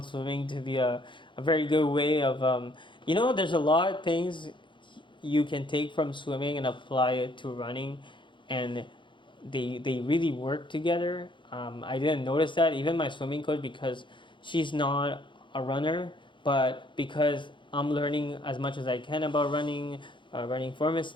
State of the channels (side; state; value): right; late; 0.23 ms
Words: swimming to be a very good way of, there's a lot of things you can take from swimming and apply it to running, and they really work together. I didn't notice that. Even my swimming coach, because she's not a runner, but because I'm learning as much as I can about running, running form and